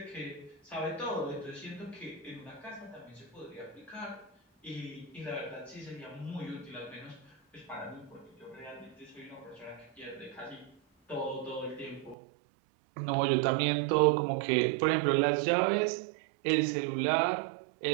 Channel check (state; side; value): drops out; left; at 12.2 s